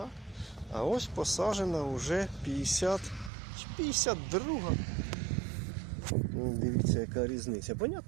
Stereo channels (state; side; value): drops out; left; at 3.3 s